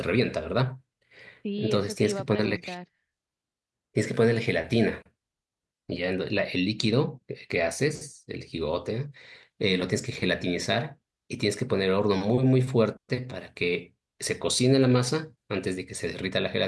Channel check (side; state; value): both; identical; correlation 1.00